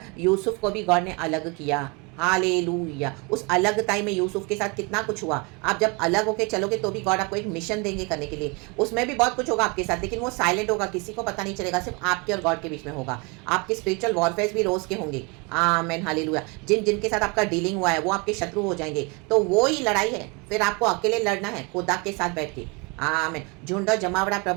यूसुफ को भी गॉड ने अलग किया, हालेलुया। उस अलग टाइम में यूसुफ के साथ कितना कुछ हुआ। आप जब अलग होके चलोगे तो भी गॉड आपको एक मिशन देंगे करने के लिए, उसमें भी बहुत कुछ होगा आपके साथ, लेकिन वो साइलेंट होगा, किसी को पता नहीं चलेगा, सिर्फ आपके और गॉड के बीच में होगा। आपके स्पिरिचुअल वॉरफेयर भी रोज के होंगे, आमेन हालेलुया। जिनके साथ आपका डीलिंग हुआ है वो आपके शत्रु हो जाएंगे, तो वो ही लड़ाई है, फिर आपको अकेले लड़ना है खुदा के साथ बैठ के, आमेन। झुंड और जमावड़ा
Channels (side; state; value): left; quieter; 29.9 dB